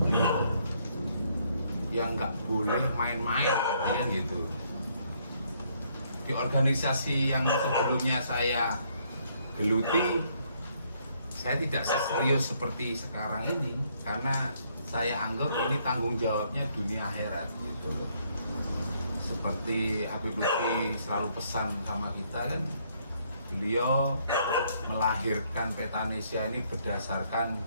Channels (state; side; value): inverted; both; correlation -0.69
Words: beliau yang nggak boleh main-main gitu. Di organisasi yang sebelumnya saya geluti, saya tidak serius seperti sekarang ini karena saya anggap ini tanggung jawabnya dunia akhirat gitu. Seperti Habib Lutfi selalu pesan sama kita kan, beliau melahirkan Petanesia ini berdasarkan